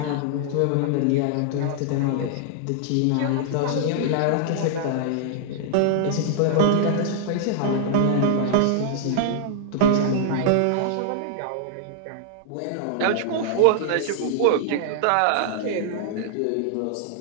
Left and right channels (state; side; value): different; both; correlation -0.01